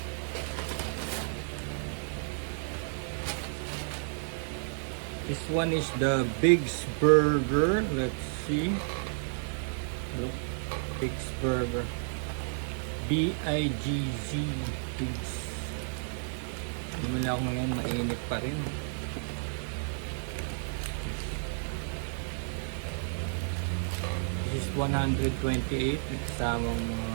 This one is the Big's Burger. Let's see. Look, Big's Burger. B-I-G-Z. Big's. Namala ako ngayon, mainit pa rin. This is 128. Nagkasamang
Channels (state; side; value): silent; left; digital silence